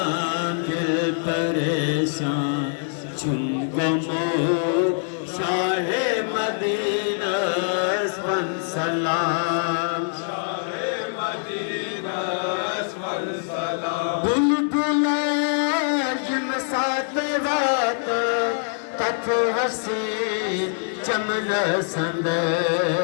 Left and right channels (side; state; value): right; silent; digital silence